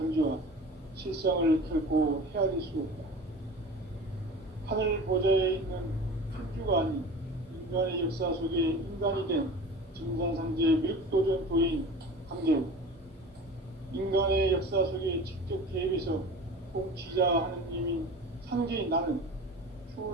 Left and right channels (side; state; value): both; normal; correlation 0.37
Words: 실상을 결코 헤아릴 수 없다. 하늘 보좌에 있는 천주가 아닌 인간의 역사 속에 인간이 된 증산상제 미륵도전 도인 강제우, 인간의 역사 속에 직접 개입해서 통치자 하느님인 상제인 나는